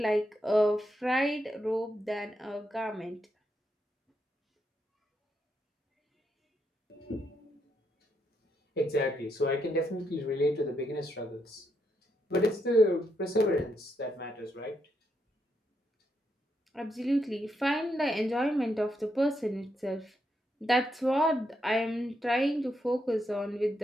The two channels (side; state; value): both; normal; correlation 0.81